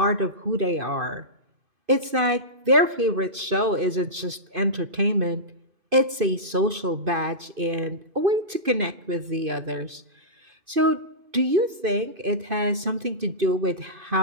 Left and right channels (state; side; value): late; left; 2.5 ms